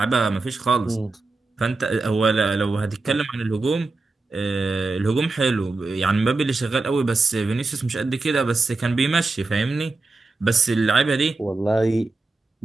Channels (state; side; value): quieter; left; 3.5 dB